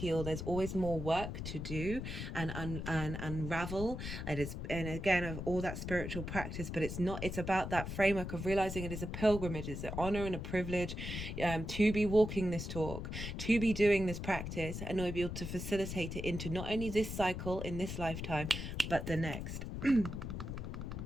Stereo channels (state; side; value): noise; left; rumble, 5 dB below the sound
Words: There's always more work to do and unravel. And again, of all that spiritual practice, but it's about that framework of realizing it is a pilgrimage, it's an honor and a privilege to be walking this talk, to be doing this practice, and to be able to facilitate it into not only this cycle in this lifetime, but the next.